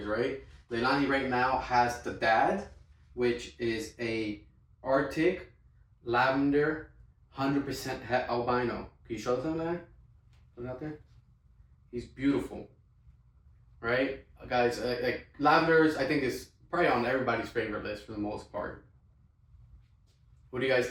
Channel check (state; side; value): identical; both; correlation 1.00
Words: right? Leilani right now has the dad, which is a Arctic lavender, 100% het albino. Can you show them that? Look out there. He's beautiful, right, guys? Like lavenders, I think is probably on everybody's favorite list for the most part. What do you guys